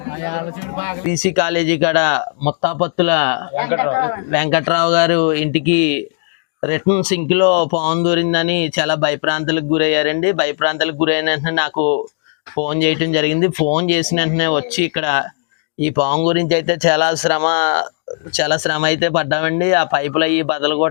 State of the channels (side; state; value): right; silent; digital silence